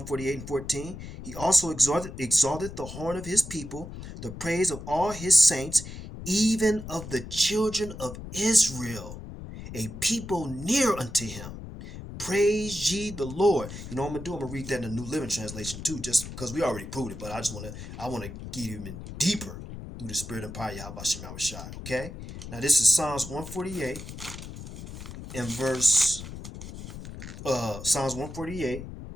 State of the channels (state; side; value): noise; left; rumble, 11 dB below the sound